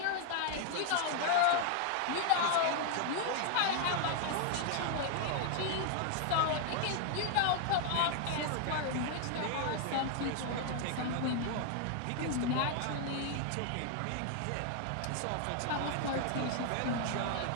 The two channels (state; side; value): different; both; correlation 0.00